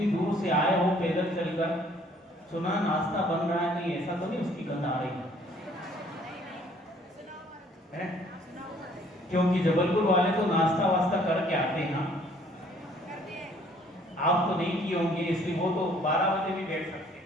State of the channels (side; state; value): both; normal; correlation 0.59